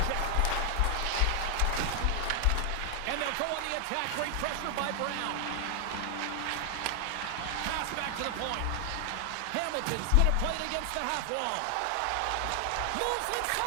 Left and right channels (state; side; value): different; both; correlation 0.00